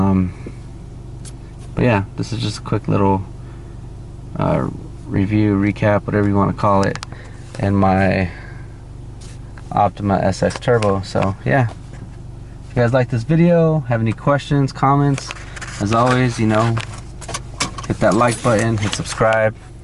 yeah, this is just a quick little review, recap, whatever you want to call it, and my OPTIMA SX Turbo. So yeah, if you guys like this video, have any questions, comments, as always, you know, hit that like button, hit subscribe,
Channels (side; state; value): both; identical; correlation 1.00